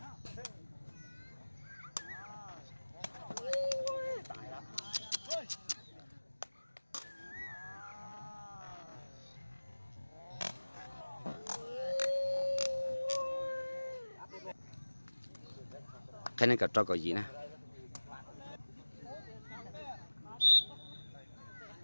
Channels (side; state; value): both; inverted; correlation -1.00